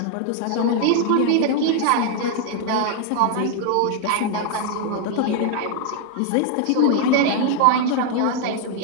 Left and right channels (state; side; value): different; both; correlation 0.00